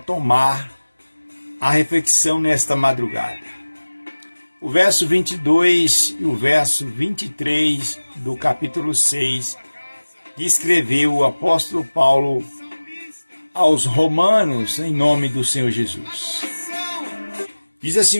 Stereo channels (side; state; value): both; inverted; correlation -1.00